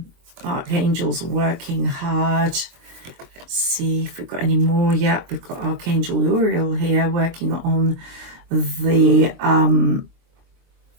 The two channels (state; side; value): late; left; 23 ms